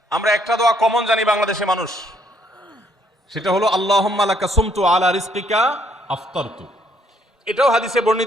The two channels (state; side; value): normal; both; correlation 0.67